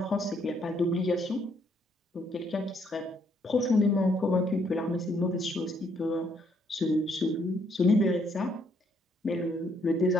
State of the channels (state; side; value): normal; both; correlation 0.70